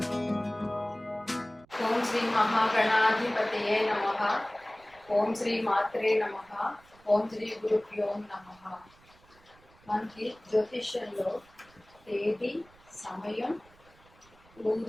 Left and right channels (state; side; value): noise; right; rumble, 28 dB below the sound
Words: ఓం శ్రీ మహాగణాధిపతయే నమః. ఓం శ్రీ మాత్రే నమః. ఓం శ్రీ గురుభ్యో నమః. మనకి జ్యోతిష్యంలో తేదీ, సమయం,